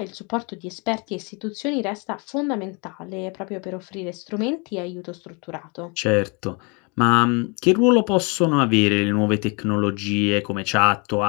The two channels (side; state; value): right; quieter; 31.5 dB